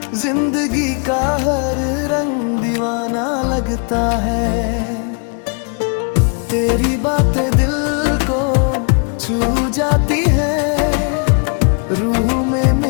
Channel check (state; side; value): quieter; right; 39.3 dB